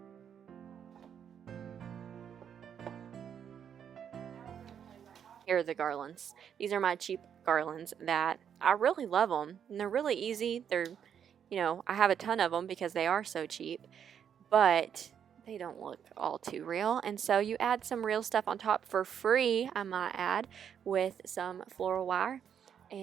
Here are the garlands. These are my cheap garlands that I really love them, and they're really easy. I have a ton of them because they are so cheap, but they don't look all too real. And so you add some real stuff on top for free, I might add, with some floral wire.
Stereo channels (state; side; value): quieter; left; 8.4 dB